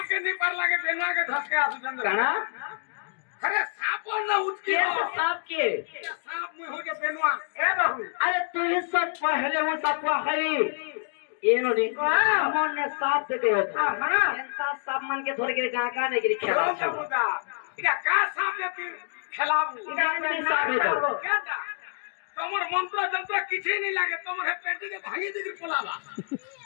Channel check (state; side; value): silent; right; digital silence